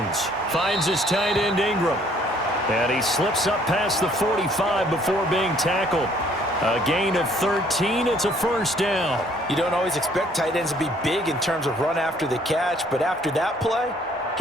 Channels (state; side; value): normal; both; correlation 0.61